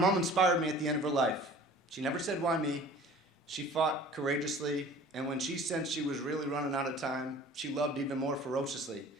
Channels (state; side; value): normal; both; correlation 0.46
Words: inspired me at the end of her life. She never said, "Why me?" She fought courageously, and when she sensed she was really running out of time, she loved even more ferociously.